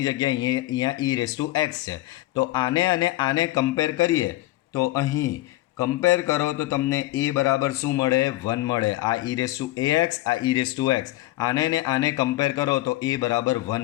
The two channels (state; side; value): quieter; right; 17.4 dB